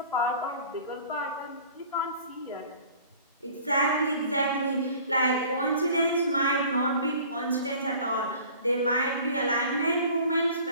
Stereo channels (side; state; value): both; inverted; correlation -0.47